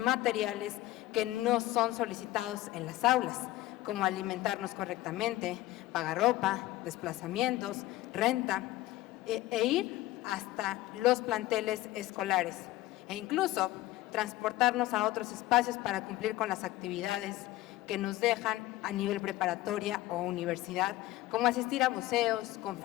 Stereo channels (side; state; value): right; quieter; 16.7 dB